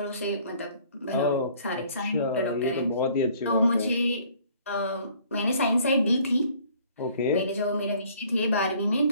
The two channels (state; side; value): inverted; both; correlation -0.57